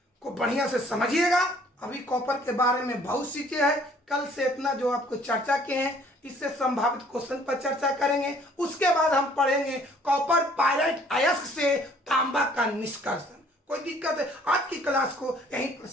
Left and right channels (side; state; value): both; normal; correlation 0.58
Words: को बढ़िया से समझिएगा। अभी कॉपर के बारे में बहुत सी चीजें है, कल से इतना जो आपको चर्चा किए हैं इससे संभावित क्वेश्चन पर चर्चा करेंगे। उसके बाद हम पढ़ेंगे कॉपर पायराइट अयस्क से तांबा का निष्कर्षण। कोई दिक्कत है? आज की क्लास को यहीं पर